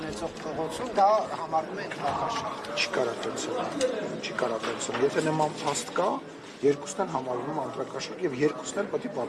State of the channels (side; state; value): both; identical; correlation 1.00